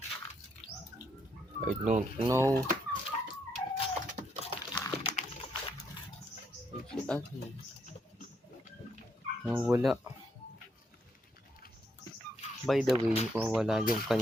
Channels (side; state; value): both; normal; correlation 0.75